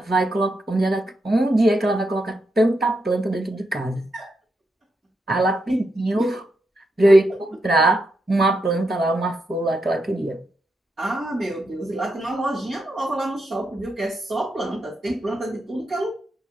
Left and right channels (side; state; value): both; normal; correlation 0.83